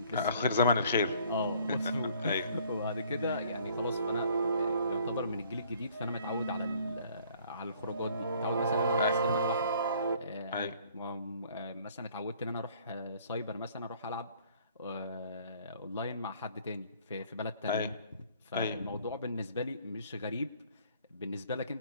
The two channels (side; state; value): both; inverted; correlation -0.58